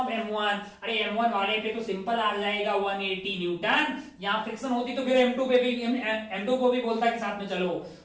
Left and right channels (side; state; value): both; identical; correlation 1.00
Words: M1। अरे M1 वाले पे तो सिंपल आ जाएगा 180 न्यूटन। यहाँ फ्रिक्शन होती तो फिर M2 पे भी, M2 को भी बोलता कि साथ में चलो,